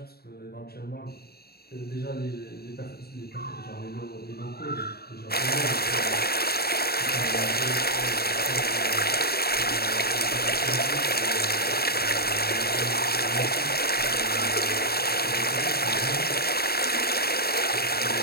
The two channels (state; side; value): late; right; 0.46 ms